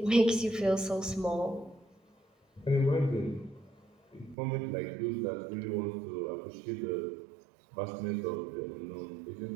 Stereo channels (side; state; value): left; drops out; at 4.4 s